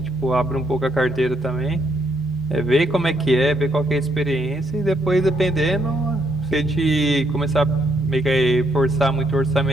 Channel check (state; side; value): normal; both; correlation 0.72